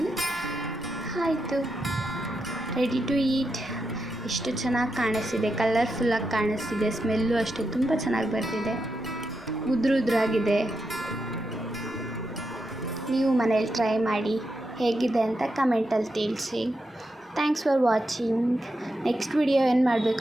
ಆಯಿತು, ರೆಡಿ ಟು ಈಟ್. ಎಷ್ಟು ಚೆನ್ನಾಗಿ ಕಾಣಿಸ್ತಿದೆ, ಕಲರ್ಫುಲ್ಲಾಗಿ ಕಾಣಿಸ್ತಿದೆ. ಸ್ಮೆಲ್ಲು ಅಷ್ಟೇ ತುಂಬ ಚೆನ್ನಾಗಿ ಬರ್ತಿದೆ. ಉದ್ರಾಗಿದೆ. ನೀವು ಮನೇಲಿ ಟ್ರೈ ಮಾಡಿ, ಹೇಗಿದೆ ಅಂತ ಕಮೆಂಟಲ್ಲಿ ತಿಳಿಸಿ. Thanks for watching. Next video ಏನು ಮಾಡಬೇಕು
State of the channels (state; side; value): normal; both; correlation 0.86